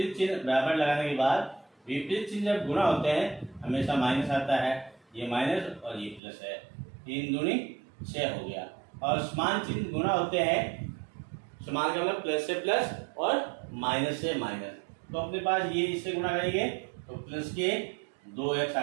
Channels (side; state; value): left; drops out; at 6.2 s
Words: चिन्ह बराबर लगाने के बाद, विपरीत चिन्ह जब गुणा होते हैं हमेशा माइनस आता है, ये माइनस और ये प्लस है, 3 दूनी 6 हो गया। और समान चिन्ह गुणा होते हैं, समान का मतलब प्लस से प्लस और माइनस से माइनस, तो अपने पास ये इससे गुणा करेंगे तो प्लस के 2x आ